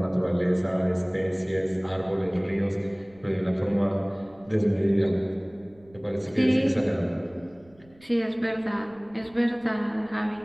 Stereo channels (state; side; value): noise; right; rumble, 28 dB below the sound